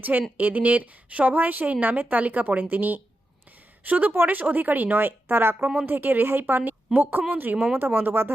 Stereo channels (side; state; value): both; normal; correlation 0.88